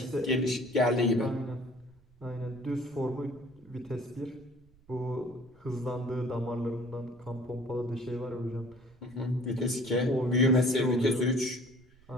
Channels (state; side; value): noise; right; rumble, 29 dB below the sound